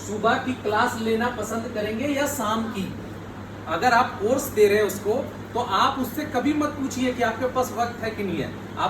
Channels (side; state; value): both; identical; correlation 1.00